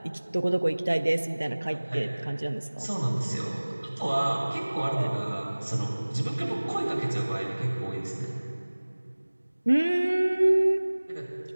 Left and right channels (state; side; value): inverted; both; correlation -1.00